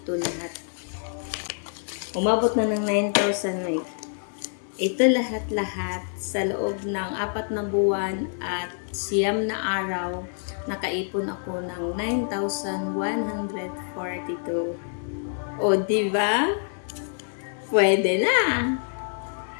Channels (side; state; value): right; silent; 61 dB below the other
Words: lahat. Umabot na ng 9,000 may. Ito lahat-lahat sa loob ng 4 na buwan at 9 na araw, nakaipon ako ng 9,142. O, diba? Pwede na.